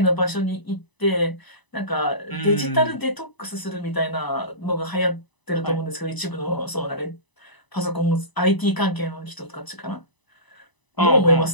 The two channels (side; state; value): right; late; 1.0 ms